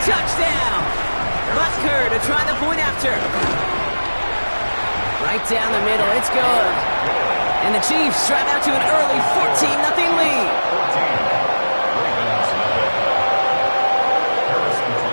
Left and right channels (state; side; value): inverted; both; correlation -1.00